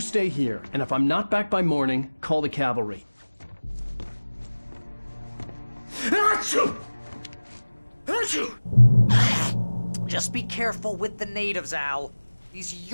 stay here, and if I'm not back by morning, call the cavalry. Just be careful with the natives, Al. These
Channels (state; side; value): inverted; both; correlation -1.00